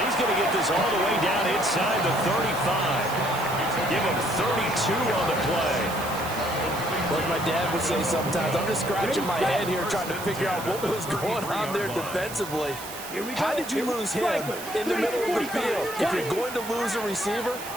he's going to get this all the way down inside the 35. Give him 32 on the play. Like my dad would say sometimes, I'm just scratching my head here trying to figure out what was going on there defensively. How did you lose him in the middle of the field? If you're going to lose a receiver,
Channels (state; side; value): noise; right; hiss, 12 dB below the sound